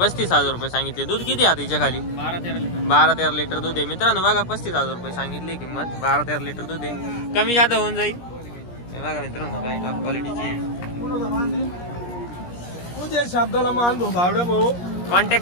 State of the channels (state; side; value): late; right; 17 ms